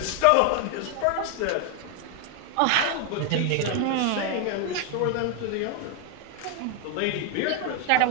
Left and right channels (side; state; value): both; different; correlation 0.01